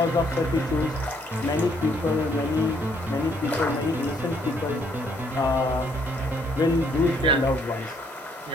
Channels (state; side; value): normal; both; correlation 0.68